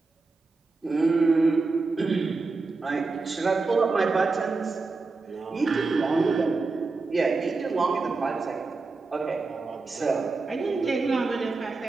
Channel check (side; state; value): left; quieter; 3.9 dB